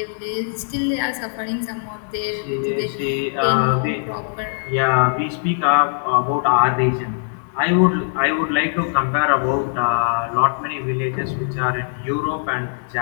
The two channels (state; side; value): silent; right; digital silence